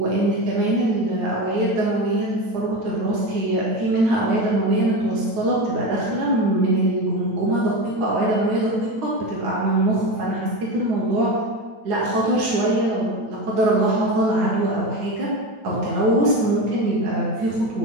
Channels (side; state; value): left; late; 9.1 ms